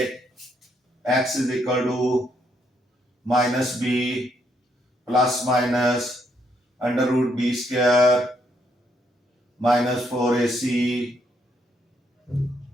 x is equal to -b plus minus under root b square -4ac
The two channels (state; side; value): normal; both; correlation 0.74